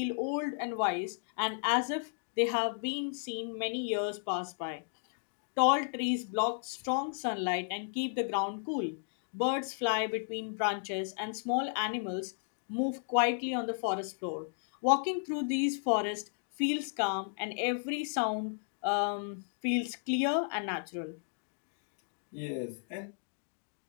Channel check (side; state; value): right; silent; digital silence